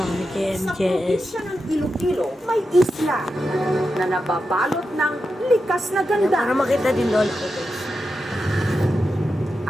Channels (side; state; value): both; normal; correlation 0.89